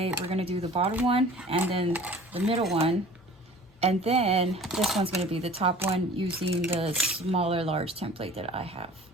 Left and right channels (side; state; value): both; normal; correlation 0.46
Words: we're going to do the bottom one and then the middle one, and then this one's going to be the top one using the smaller large template that I have.